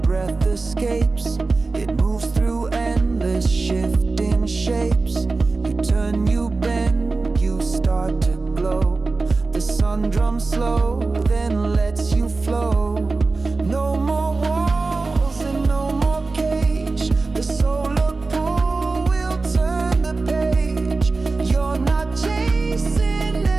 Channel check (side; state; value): left; quieter; 3.7 dB